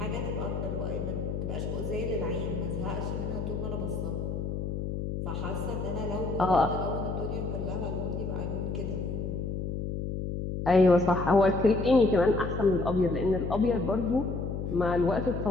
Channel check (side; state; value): left; noise; hum, 3 dB below the sound